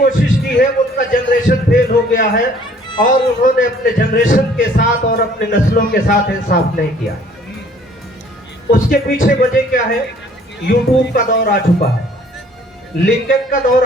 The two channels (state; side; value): normal; both; correlation 0.57